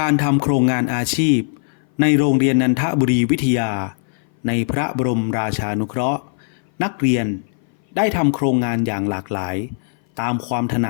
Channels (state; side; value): silent; right; 59 dB below the other